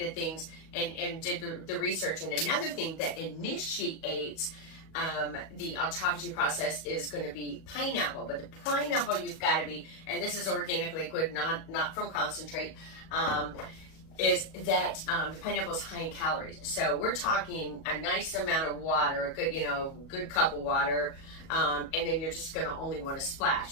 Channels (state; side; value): late; right; 37 ms